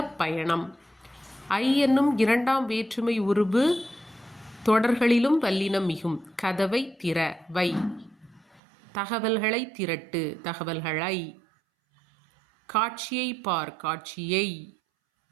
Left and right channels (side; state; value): left; drops out; at 8.6 s